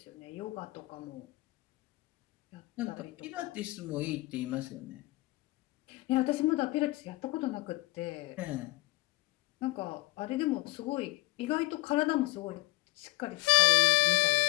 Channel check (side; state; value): right; quieter; 21.5 dB